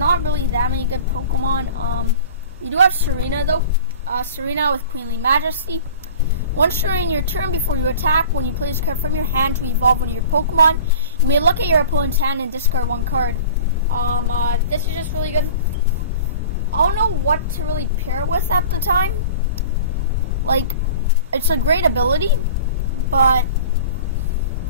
really that many good Pokemon. We do have Serena though. Serena with Queenly Majesty. Once during your turn, before you attack, when you play this card from your hand to evolve one of your Pokemon, you may look at your opponent's hand and discard 1 card. This is just really good. I don't know what to really pair it with at the time. Like, it's a great ability, but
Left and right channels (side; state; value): both; inverted; correlation -0.42